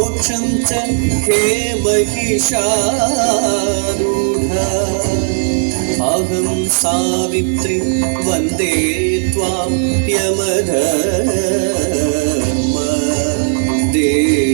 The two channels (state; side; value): silent; left; digital silence